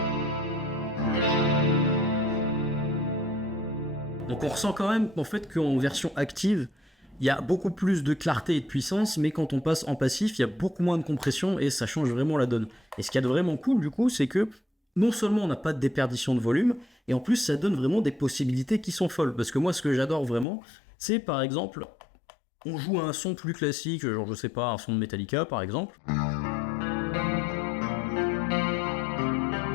Donc on ressent quand même en fait qu'en version active, il y a beaucoup plus de clarté et de puissance, mais quand on passe en passif, il y a beaucoup moins de compression et ça change vraiment la donne. Et ce qu'il y a de vraiment cool du coup, c'est que non seulement on n'a pas de déperdition de volume, et en plus ça donne vraiment des possibilités qui sont folles. Parce que moi, ce que j'adore vraiment, c'est par exemple, on joue à un son plus classique, genre je sais pas, un son de Metallica par exemple.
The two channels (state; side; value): drops out; right; at 20.5 s